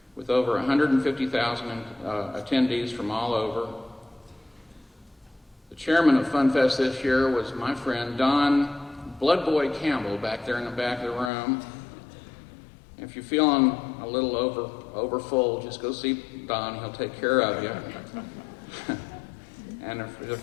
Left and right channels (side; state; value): right; drops out; at 11.3 s